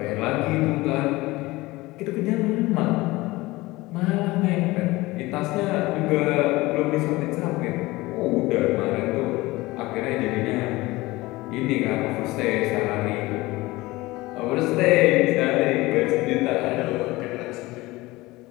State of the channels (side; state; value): right; quieter; 20.3 dB